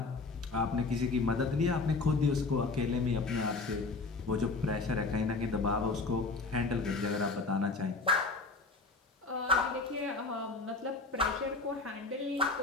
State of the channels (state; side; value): quieter; right; 3.7 dB